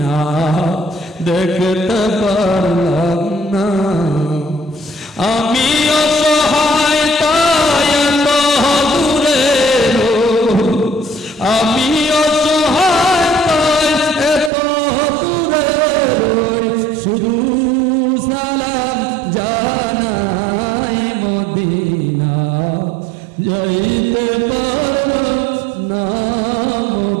দেখতে পারলাম না। আমি অসহায় তাই এত দূরে আমি অসহায় তাই এত দূরে শুধু সালাম জানাই মদিনা যাইতে পারলাম না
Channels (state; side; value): drops out; left; at 14.5 s